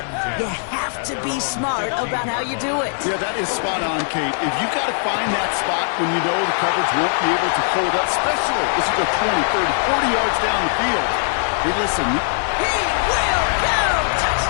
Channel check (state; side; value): silent; right; digital silence